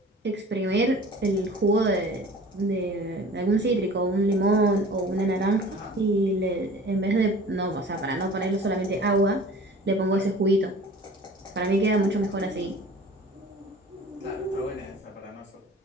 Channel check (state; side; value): normal; both; correlation 0.44